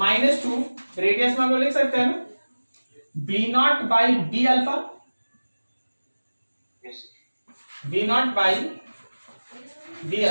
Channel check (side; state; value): both; inverted; correlation -1.00